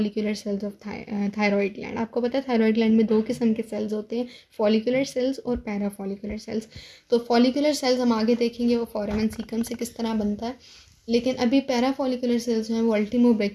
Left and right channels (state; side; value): identical; both; correlation 1.00